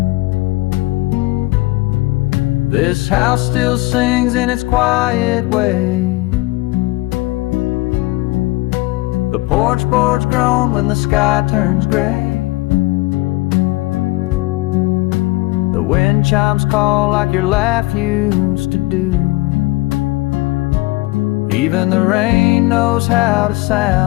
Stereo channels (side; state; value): right; quieter; 21.3 dB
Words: This house still sings in its quiet way. The porch boards groan when the sky turns gray. The wind chimes call like your laugh used to do. Even the rain knows how to